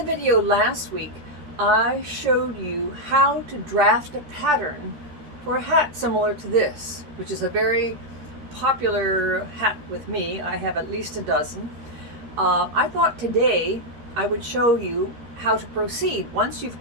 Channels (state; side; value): late; left; 13 ms